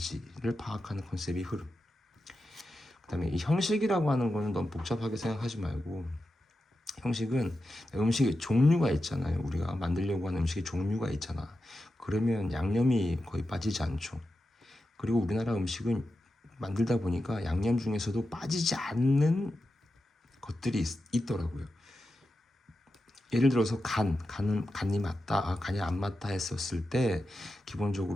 파악하는 컨셉이 흐름. 그 다음에 이 형식이라고 하는 거는 너무 복잡하게 생각하지 말고, 형식은 음식의 종류가 있잖아요. 우리가 만들려고 하는 음식의 종류가 있잖아. 그러면 양념이 거의 빠지지 않죠. 그리고 우리나라 음식은 만들다 보니까 양념 중에서도 빠지지 않는 것들이 있더라고요. 예를 들어서 간이 맞다, 간이 안 맞다 했었을 때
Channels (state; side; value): normal; both; correlation 0.90